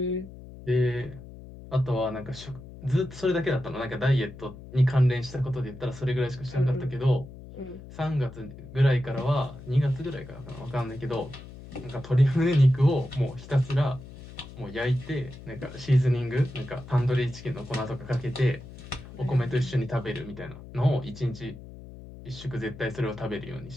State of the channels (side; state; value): left; noise; hum, 15 dB below the sound